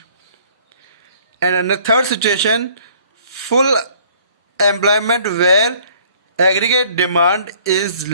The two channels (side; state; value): both; inverted; correlation -0.57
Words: And in the third situation, full employment where aggregate demand is